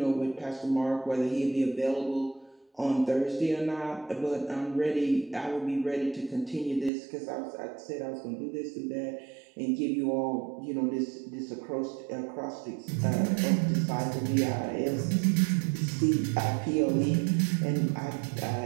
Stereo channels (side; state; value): left; drops out; at 6.9 s